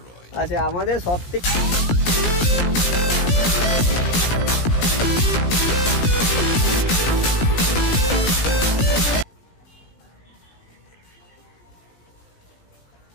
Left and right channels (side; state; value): right; late; 17 ms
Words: আচ্ছা আমাদের সব থেকে